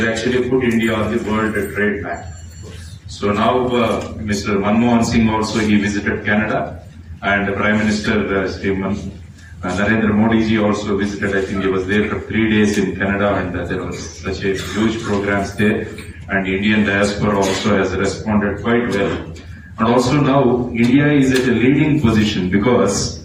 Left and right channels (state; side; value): identical; both; correlation 1.00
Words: actually put India on the world trade map. So now Mr. Manmohan Singh also, he visited Canada, and Prime Minister Narendra Modi ji also visited. I think he was there for 3 days in Canada, and there was such a huge programs there, and the Indian diaspora also has responded quite well. And also now India is at a leading position because